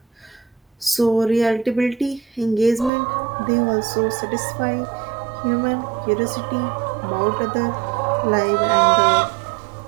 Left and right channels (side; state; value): left; drops out; at 2.9 s